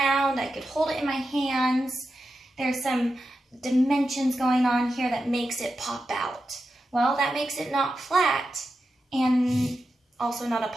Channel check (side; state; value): both; normal; correlation 0.89